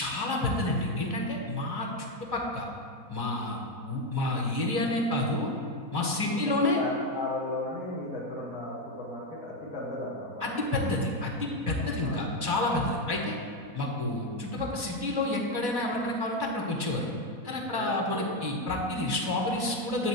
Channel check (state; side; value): late; left; 4.1 ms